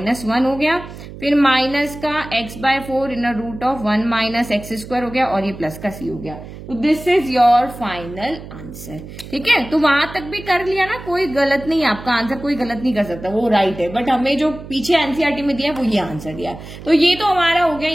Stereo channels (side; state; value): right; noise; hum, 14 dB below the sound